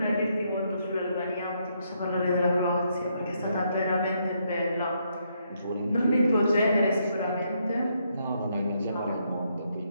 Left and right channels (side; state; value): both; inverted; correlation -0.75